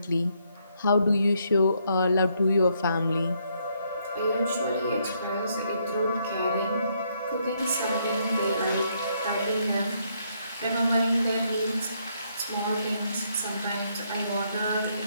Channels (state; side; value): inverted; both; correlation -0.73